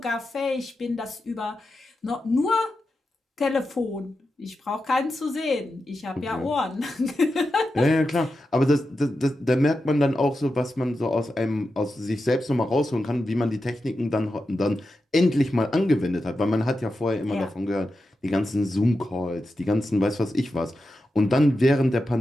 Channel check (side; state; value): both; normal; correlation 0.90